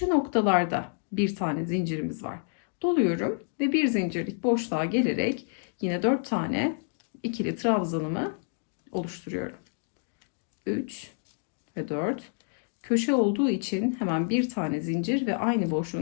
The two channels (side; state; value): right; silent; 59 dB below the other